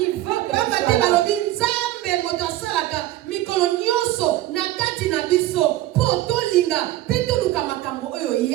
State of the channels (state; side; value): quieter; left; 15.2 dB